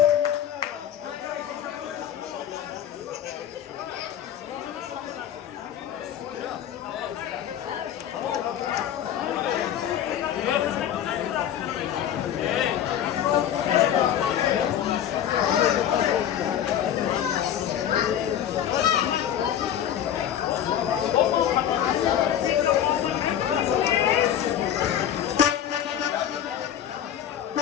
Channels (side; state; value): right; quieter; 10.2 dB